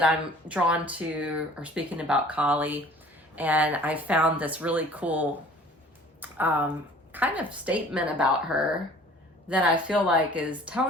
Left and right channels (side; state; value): both; normal; correlation 0.49